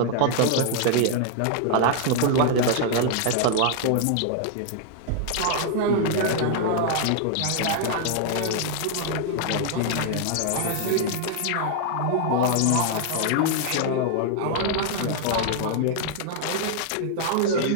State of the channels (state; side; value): different; both; correlation 0.00